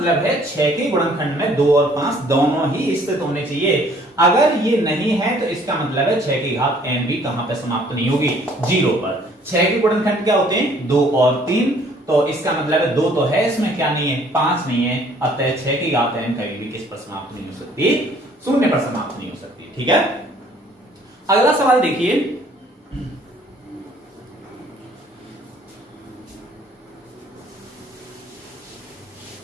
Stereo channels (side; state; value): both; normal; correlation 0.58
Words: है 6 के गुणनखंड में 2 और 5 दोनों ही स्थित होने चाहिए। अगर ये नहीं है तो इसका मतलब है 6 की घात n भी कहां पर समाप्त नहीं होगी, 0 पर। 6 के गुणनखंड क्या होते हैं, 2 और 3। तो इसका मतलब है 2 तो है, इसमें क्या नहीं है, 5 नहीं है। अतः 6 की घात n कभी भी किस पर समाप्त नहीं हो सकती, 0 पर समाप्त नहीं हो सकती। ठीक है, अगला सवाल देखिए।